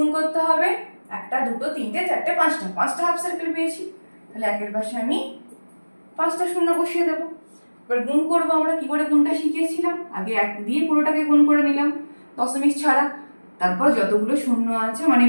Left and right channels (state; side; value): inverted; both; correlation -1.00